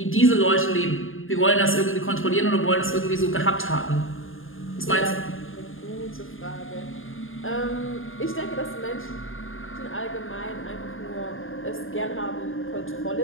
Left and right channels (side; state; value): right; late; 0.59 ms